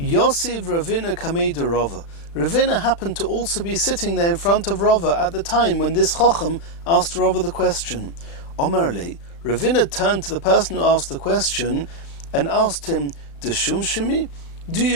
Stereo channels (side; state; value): right; late; 35 ms